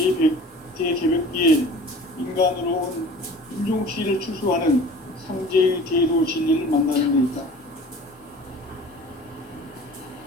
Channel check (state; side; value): normal; both; correlation 0.43